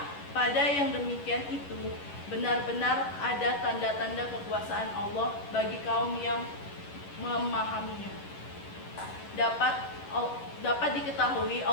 pada yang demikian itu benar-benar ada tanda-tanda kekuasaan Allah bagi kaum yang memahaminya. Dapat diketahui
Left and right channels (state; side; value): late; right; 11 ms